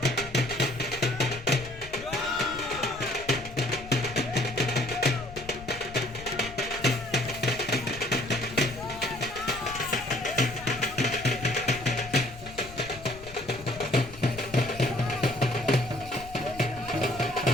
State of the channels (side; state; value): left; noise; rumble, 16 dB below the sound